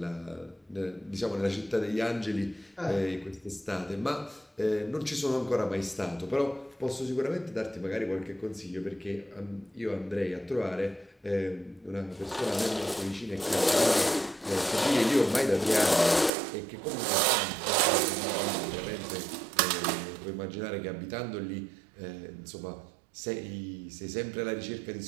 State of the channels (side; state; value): left; drops out; at 16.3 s